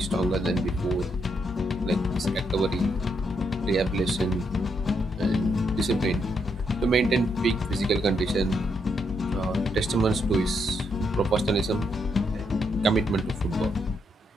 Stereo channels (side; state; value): both; normal; correlation 0.78